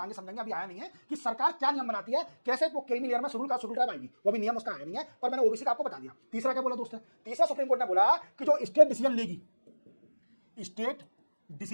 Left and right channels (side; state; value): both; inverted; correlation -1.00